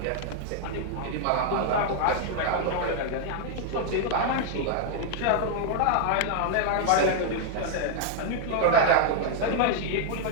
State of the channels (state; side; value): different; both; correlation 0.00